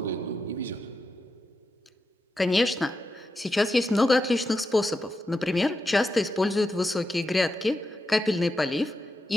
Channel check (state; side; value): normal; both; correlation 0.87